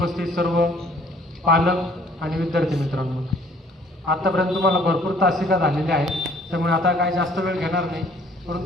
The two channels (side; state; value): both; normal; correlation 0.58